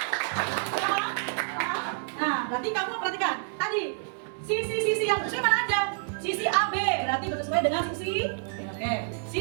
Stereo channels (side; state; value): left; silent; 59 dB below the other